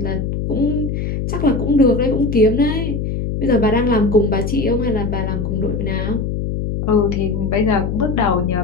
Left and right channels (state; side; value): noise; left; hum, 2 dB below the sound